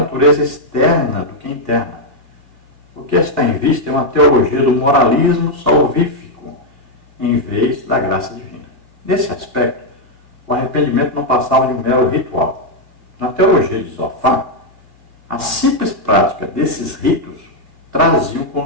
externa do que interna. O que está em vista é uma teologia do moralismo salvífico, em vez da graça divina. Nesse aspecto, o arrependimento não passava de um mero ritual. Na teologia de Zofar, a simples prática desses ritos traziam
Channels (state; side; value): late; left; 2.2 ms